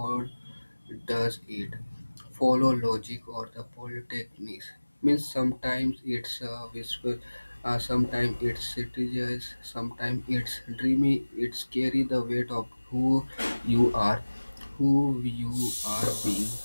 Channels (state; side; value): inverted; both; correlation -1.00